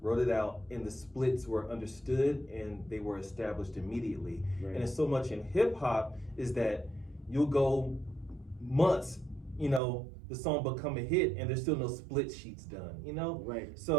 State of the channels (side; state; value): left; drops out; at 9.8 s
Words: it out, and the splits were understood and they were established immediately. Right. And it's so much in hip hop is that you'll go months, you know, the song become a hit and there's still no split sheets done, you know? Right.